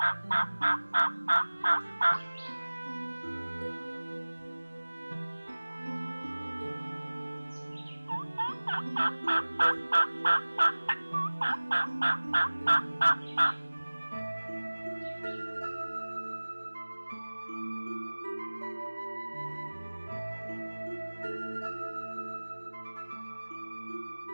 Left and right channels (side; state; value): both; inverted; correlation -1.00